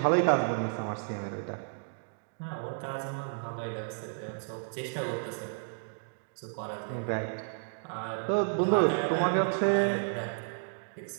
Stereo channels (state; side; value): silent; left; digital silence